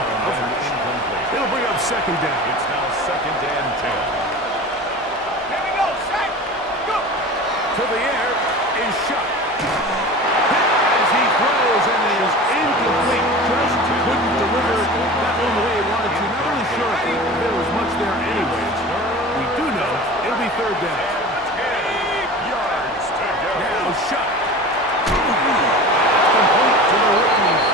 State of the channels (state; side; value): normal; both; correlation 0.35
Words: It'll bring up 2nd down. It's now 2nd and 10. Here we go, set, go. To the air is Chuck. As he throws and is incomplete. Just couldn't deliver that one the way he wanted to. Not really sure if there was much there anyways. We do know it'll be 3rd down. Now Chuck. Complete to the rookie.